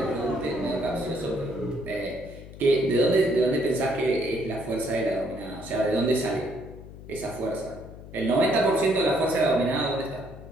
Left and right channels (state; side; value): noise; left; hum, 15 dB below the sound